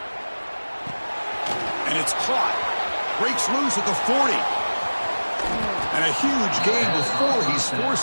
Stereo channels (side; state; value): both; inverted; correlation -1.00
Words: And it's caught. Breaks loose at the 40. And a huge gain before he's